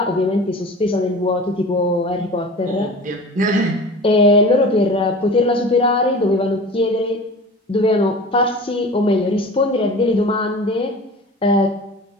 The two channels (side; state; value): both; normal; correlation 0.38